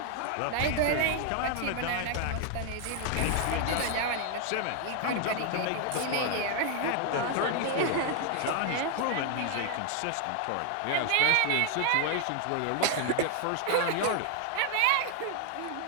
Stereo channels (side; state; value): both; different; correlation 0.00